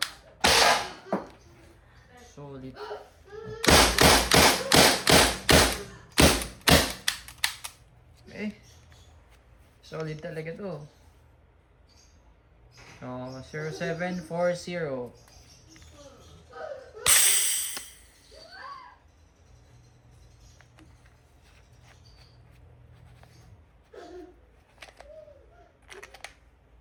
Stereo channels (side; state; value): both; identical; correlation 1.00